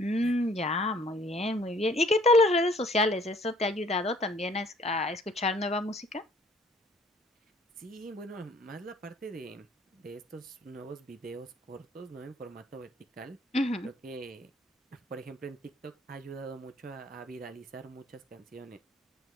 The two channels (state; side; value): normal; both; correlation 0.58